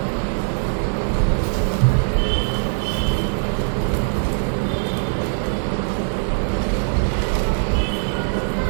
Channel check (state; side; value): silent; left; digital silence